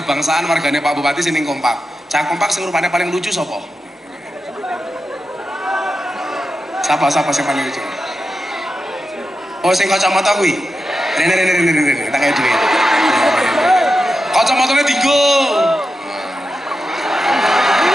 wargane Pak Bupati sing kompak. Cak kompak sing rupane paling lucu sapa? Siapa sing paling lucu? Oh sing kacamata kuwi. Rene tak kaya duit. Kacamatane dinggo.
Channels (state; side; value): normal; both; correlation 0.90